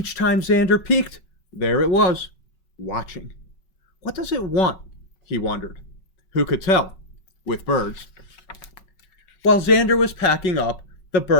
time Xander peeked, there it was, watching. What does it want? He wondered. Who could tell? With birds. While Xander was packing up, the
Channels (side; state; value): right; late; 5.3 ms